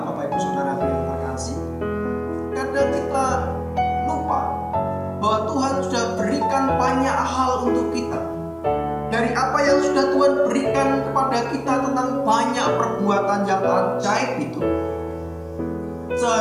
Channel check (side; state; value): both; identical; correlation 1.00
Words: Bapak Ibu Saudara yang terkasih. Kadang kita lupa bahwa Tuhan sudah berikan banyak hal untuk kita. Dari apa yang sudah Tuhan berikan kepada kita tentang banyak perbuatan yang ajaib itu,